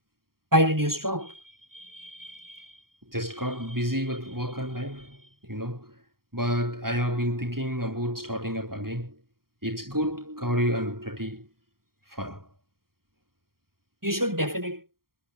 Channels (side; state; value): left; late; 0.93 ms